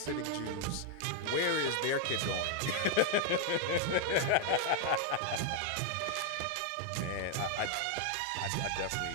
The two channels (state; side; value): different; both; correlation 0.00